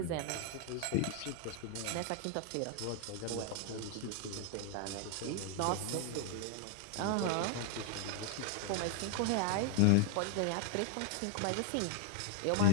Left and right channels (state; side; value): different; both; correlation 0.00